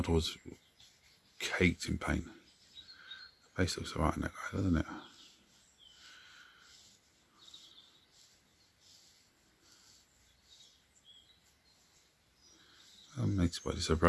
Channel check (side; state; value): both; identical; correlation 1.00